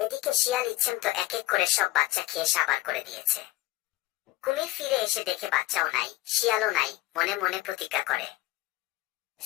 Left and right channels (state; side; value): quieter; right; 17.7 dB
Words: শিয়াল ইচ্ছেমতো এক এক করে সব বাচ্চা খেয়ে সাবার করে দিয়েছে। কুমির ফিরে এসে দেখে বাচ্চাও নাই, শিয়ালও নাই। মনে মনে প্রতিজ্ঞা করে,